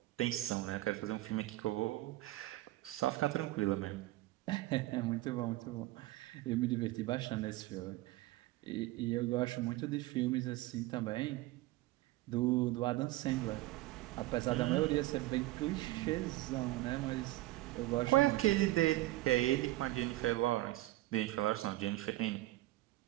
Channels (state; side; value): quieter; left; 17.8 dB